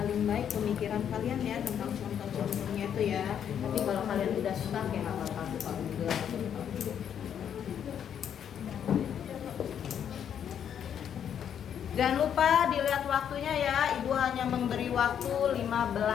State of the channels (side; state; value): right; quieter; 8.8 dB